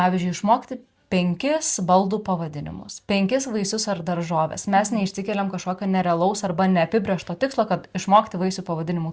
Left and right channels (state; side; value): identical; both; correlation 1.00